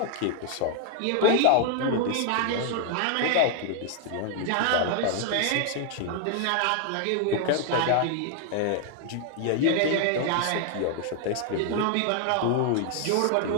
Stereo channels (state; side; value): different; both; correlation 0.00